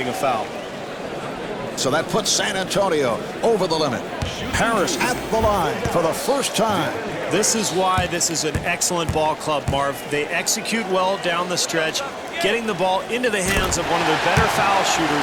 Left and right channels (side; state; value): both; identical; correlation 1.00